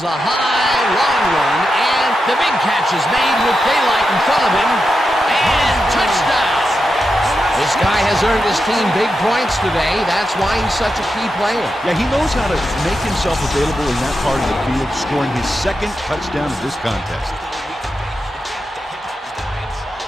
a high, long run, and the big catch is made with daylight in front of him, and touchdown! This guy has earned his team big points today. That's why he's such a key player. Yeah, he knows how to make himself available in that part of the field, scoring his second touchdown of this contest.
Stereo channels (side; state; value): both; normal; correlation 0.88